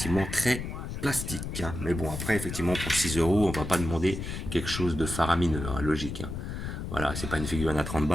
très plastique. Hein. Mais bon, après, effectivement, pour 6 euros, on va pas demander quelque chose de faramineux, hein, logique. Hein. Voilà, c'est pas une figurine à 30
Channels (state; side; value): noise; left; rumble, 6 dB below the sound